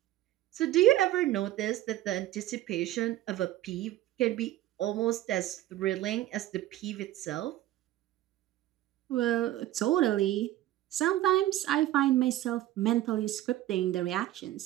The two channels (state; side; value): quieter; left; 14.5 dB